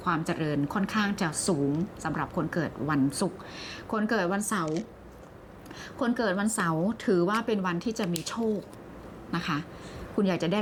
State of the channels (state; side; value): identical; both; correlation 1.00